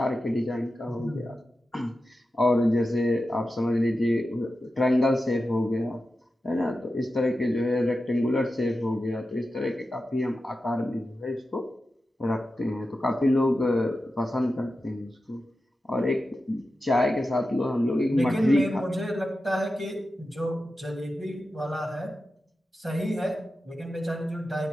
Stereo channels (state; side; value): normal; both; correlation 0.92